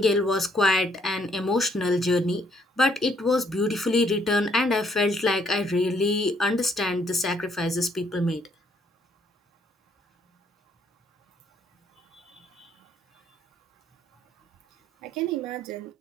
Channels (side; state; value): both; normal; correlation 0.68